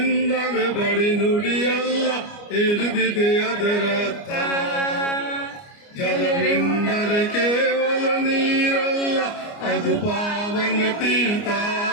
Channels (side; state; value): right; late; 29 ms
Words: ಬಳಿ ನುಡಿಯಲ್ಲ ಹೇಳಿದೆ ಅದರರ್ಥ. ಜಲವೆಂದರೆ ಕೇವಲ ನೀರಲ್ಲ, ಅದು ಪಾವನ ತೀರ್ಥ,